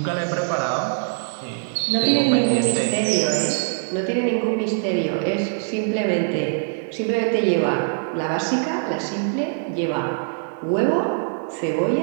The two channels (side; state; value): left; silent; digital silence